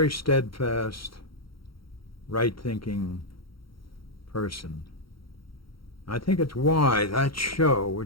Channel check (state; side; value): late; right; 0.74 ms